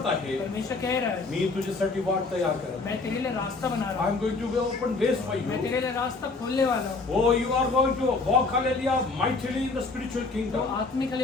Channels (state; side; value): quieter; right; 3.8 dB